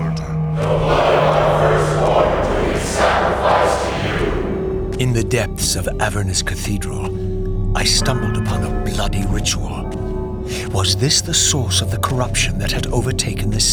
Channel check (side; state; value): both; identical; correlation 1.00